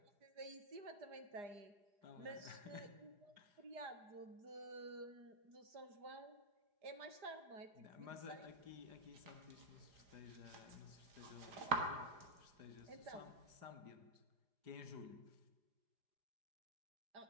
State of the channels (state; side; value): late; left; 4.9 ms